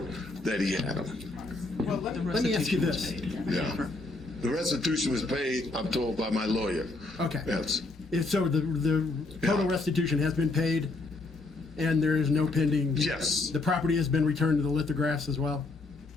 that he had them. Well, let me ask you this. Yeah. The restitution was paid, I'm told, by my lawyer. Okay. Yes. So the total restitution has been paid, and there is no pending? Yes. The property has been returned to the lithographs as well?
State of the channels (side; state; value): right; quieter; 3.3 dB